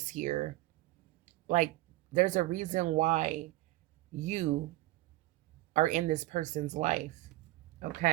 here. Like there's a reason why you are in this person's life.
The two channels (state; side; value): quieter; left; 17.8 dB